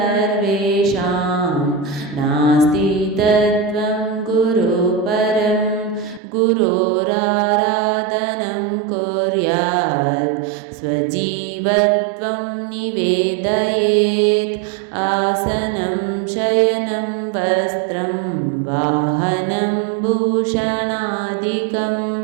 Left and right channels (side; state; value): left; drops out; at 6.2 s